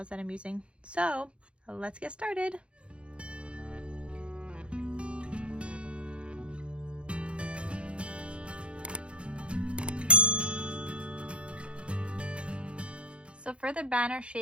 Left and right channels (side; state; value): left; late; 0.058 ms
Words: that I'm using. So let's get started. So for the banner